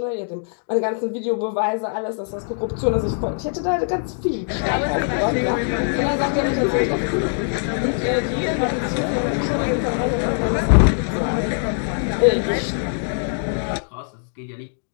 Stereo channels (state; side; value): silent; right; digital silence